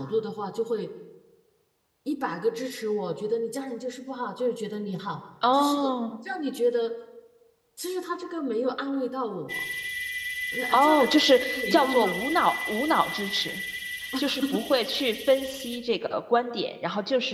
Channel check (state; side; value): identical; both; correlation 1.00